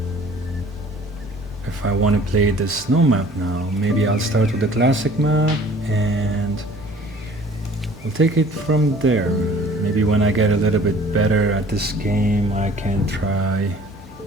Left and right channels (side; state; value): both; normal; correlation 0.51